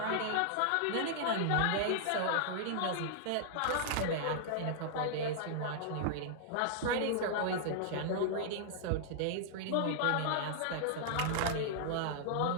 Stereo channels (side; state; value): both; different; correlation -0.01